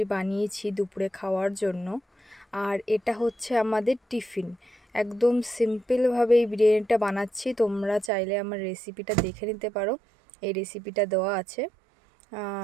বানিয়েছি দুপুরে খাওয়ার জন্য। আর এটা হচ্ছে আমাদের টিফিন। একদম সিম্পলভাবে এই বিরিয়ানিটা বানাচ্ছি। তোমরা চাইলে আমার রেসিপিটা দেখে নিতে পারো, এই রেসিপিটা দেওয়া আছে।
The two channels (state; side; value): drops out; left; at 8.1 s